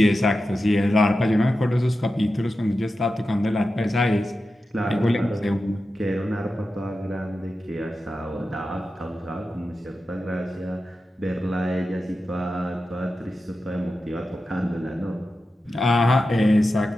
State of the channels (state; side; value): normal; both; correlation 0.91